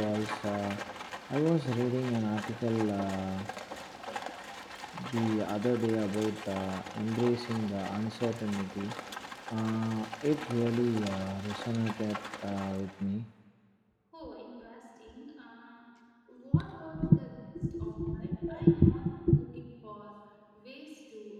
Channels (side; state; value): both; identical; correlation 1.00